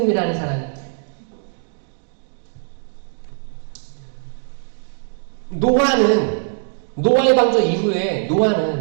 사람이. 노아의 방주 이후에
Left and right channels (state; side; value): silent; left; digital silence